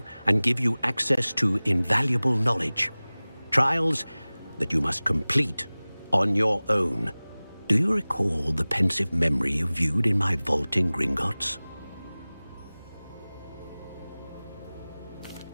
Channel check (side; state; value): both; inverted; correlation -0.99